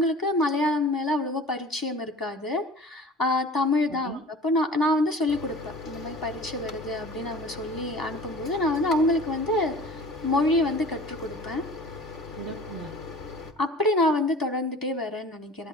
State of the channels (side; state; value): both; normal; correlation 0.42